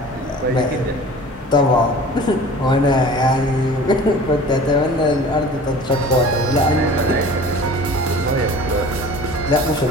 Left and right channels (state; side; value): normal; both; correlation 0.42